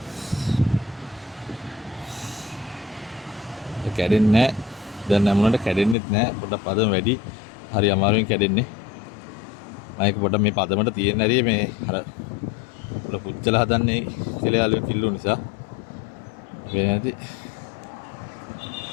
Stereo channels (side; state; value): right; drops out; at 6.0 s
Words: කැඩෙන්නේ නැහැ. දැන් නැමුණට කැඩෙන්නෙත් නැහැ. පොඩ්ඩක් පදම වැඩි. හරි අමාරුවෙන් කැඩෙන්නේ. මම ඒක පොඩ්ඩක් මේ පදමට තියෙන හැටි මේ අර පොඩ පුච්චලා හදන්නේ කෙලයාලු කිල්ලු නිසා. වෙන්නේ නැති.